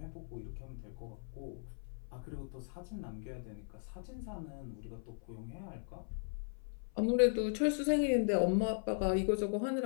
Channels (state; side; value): silent; right; 53 dB below the other